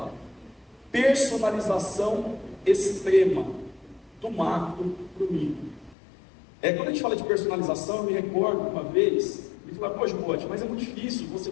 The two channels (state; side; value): drops out; right; at 6.0 s